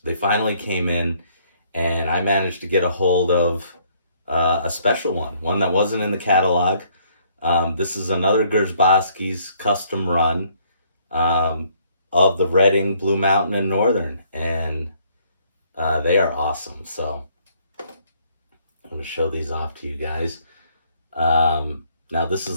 They finally came in, and I managed to get a hold of a special one that wasn't in the catalog. This is another Grzyboski's custom run of the Reading, Blue Mountain, and Northern, and they are awesome. So I'm going to show these off to you guys. Now this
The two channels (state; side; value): inverted; both; correlation -0.65